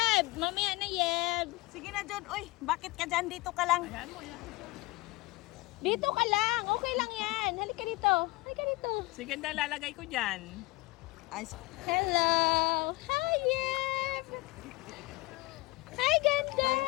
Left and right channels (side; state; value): right; quieter; 22.0 dB